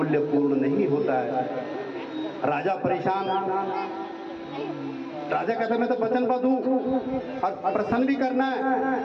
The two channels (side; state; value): both; identical; correlation 1.00